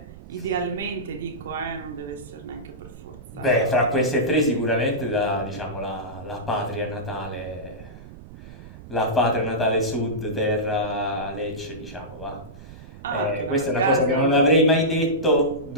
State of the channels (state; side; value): noise; right; rumble, 17 dB below the sound